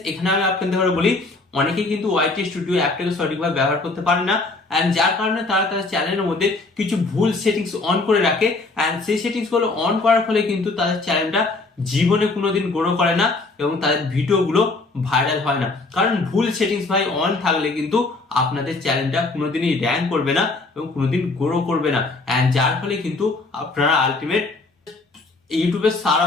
এখানে আমি আপনাদের ঘরে বলি, অনেকেই কিন্তু ওয়াইটি স্টুডিও অ্যাপটাকে সঠিকভাবে ব্যবহার করতে পারে না, এন্ড যার কারণে তারা তাদের চ্যানেলের মধ্যে কিছু ভুল সেটিংস অন করে রাখে। এন্ড সেই সেটিংস গুলো অন করার ফলে কিন্তু তাদের চ্যানেলটা জীবনে কোনোদিন গ্রো করে না এবং তাদের ভিডিওগুলো ভাইরাল হয় না। কারণ ভুল সেটিংস ভাই অন থাকলে কিন্তু আপনাদের চ্যানেলটা কোনোদিনই র্যাঙ্ক করবে না এবং কোনোদিন গ্রো করবে না। এন্ড যার ফলে কিন্তু আপনারা আলটিমেট ইউটিউবে সারা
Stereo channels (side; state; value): right; quieter; 3.4 dB